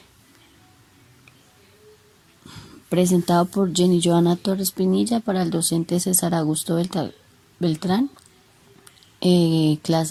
presentado por Jenny Joana Torres Pinilla para el docente César Augusto Beltrán,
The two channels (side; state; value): both; identical; correlation 1.00